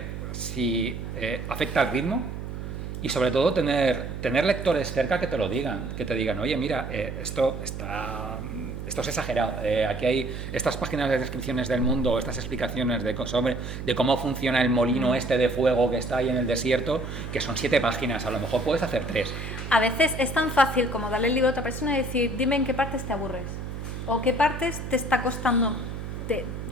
si afecta al ritmo. Y sobre todo tener lectores cerca que te lo digan, que te digan, oye, mira, esto es exagerado, aquí hay estas páginas de descripciones del mundo, estas explicaciones de cómo funciona el molino este de fuego que está ahí en el desierto, que son 7 páginas, a lo mejor puedes hacer 3. A veces es tan fácil como darle el libro a otra persona y decir, dime en qué partes te aburres, o qué partes te está costando, te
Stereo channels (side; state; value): right; noise; hum, 7 dB below the sound